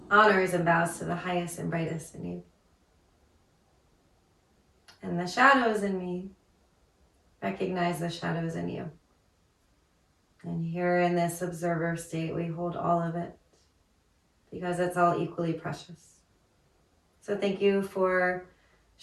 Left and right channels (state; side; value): identical; both; correlation 1.00